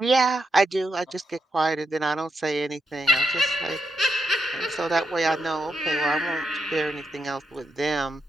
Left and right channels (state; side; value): normal; both; correlation 0.83